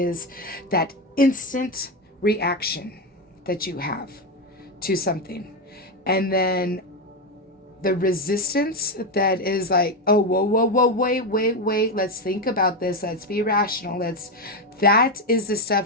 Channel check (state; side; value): normal; both; correlation 0.10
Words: that instant reaction that you have to something, and then the resistance that is like, oh, whoa, wait, let's think about this, let's be rational, that is the